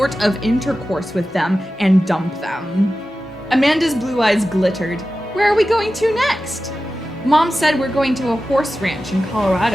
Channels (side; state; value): both; normal; correlation 0.94